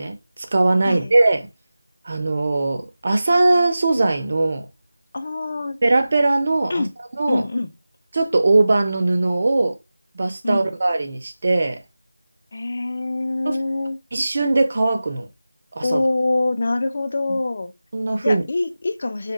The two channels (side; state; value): both; inverted; correlation -0.96